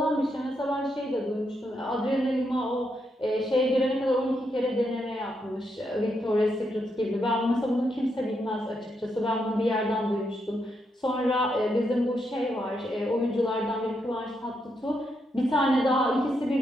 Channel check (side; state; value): both; normal; correlation 0.81